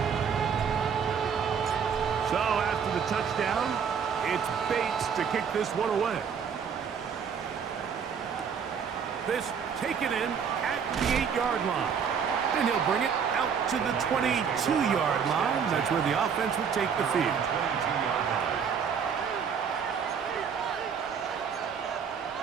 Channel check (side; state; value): left; quieter; 6.9 dB